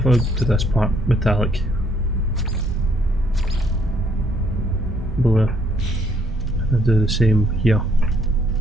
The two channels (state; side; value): normal; both; correlation 0.67